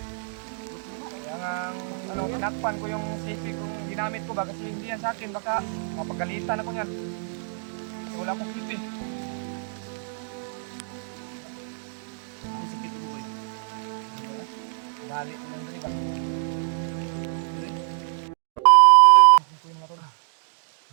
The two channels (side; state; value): left; silent; digital silence